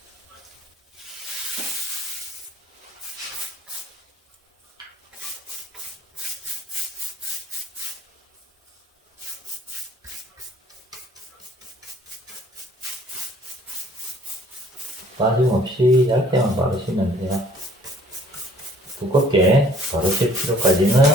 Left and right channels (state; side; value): normal; both; correlation 0.56